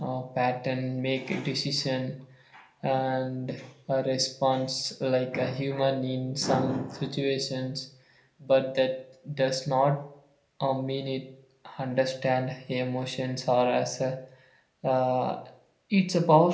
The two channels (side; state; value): both; identical; correlation 1.00